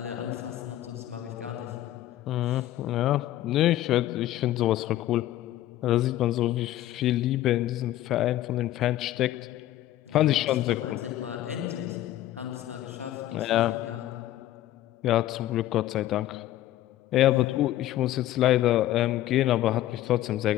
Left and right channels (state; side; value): quieter; right; 14.0 dB